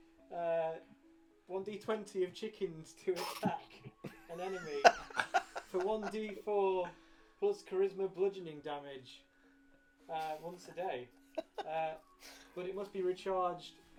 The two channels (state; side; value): identical; both; correlation 1.00